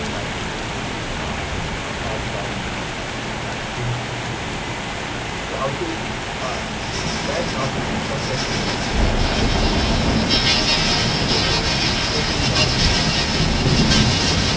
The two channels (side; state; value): both; identical; correlation 1.00